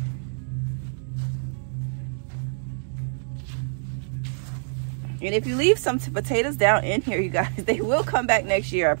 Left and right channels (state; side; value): silent; left; digital silence